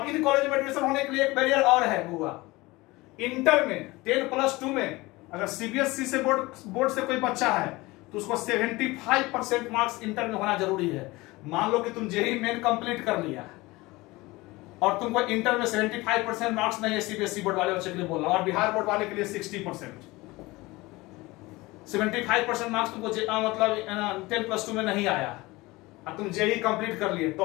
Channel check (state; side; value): quieter; right; 21.4 dB